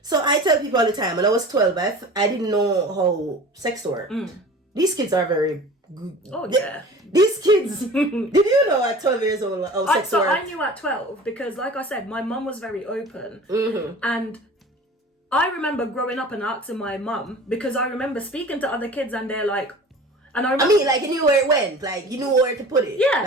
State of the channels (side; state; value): both; normal; correlation 0.40